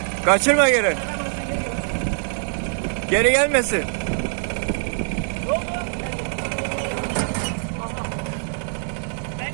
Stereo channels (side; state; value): left; silent; digital silence